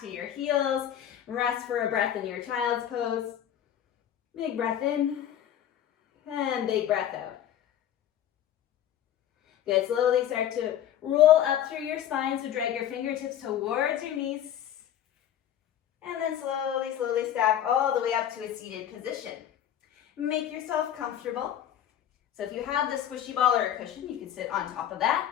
your heels. Rest for a breath in your child's pose. Big breath in, And big breath out. Good, slowly start to roll up through your spine, so drag your fingertips towards your knees. And then slowly, slowly stack all the way up to a seated position. Make yourself comfortable. So if you have the squishy ball or a cushion, you can sit on top of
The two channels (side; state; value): right; quieter; 10.6 dB